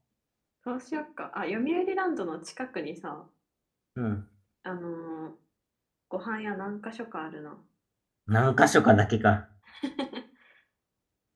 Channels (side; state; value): both; identical; correlation 1.00